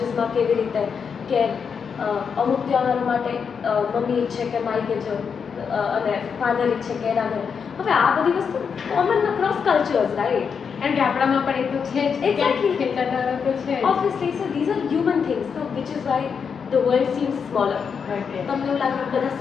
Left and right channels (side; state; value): right; quieter; 6.4 dB